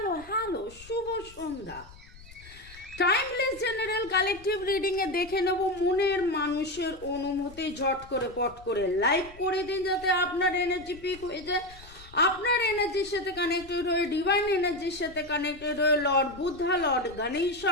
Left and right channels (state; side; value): noise; left; rumble, 20 dB below the sound